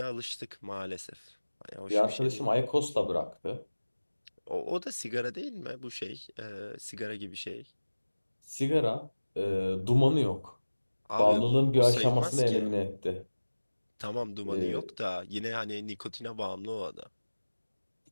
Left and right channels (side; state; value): both; inverted; correlation -1.00